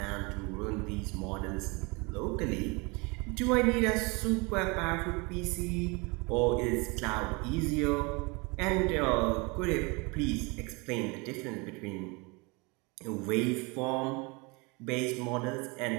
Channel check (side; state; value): left; quieter; 28.0 dB